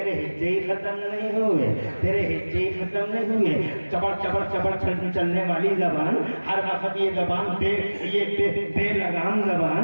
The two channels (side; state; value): both; inverted; correlation -1.00